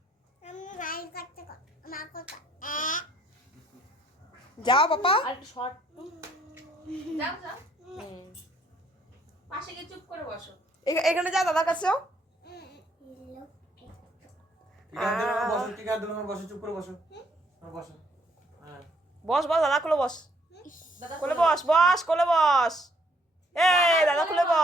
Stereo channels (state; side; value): normal; both; correlation 0.66